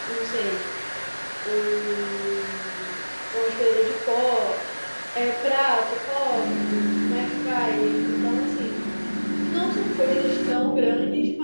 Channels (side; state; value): both; inverted; correlation -1.00